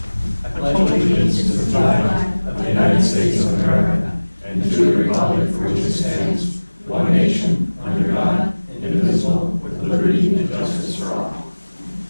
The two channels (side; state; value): both; inverted; correlation -1.00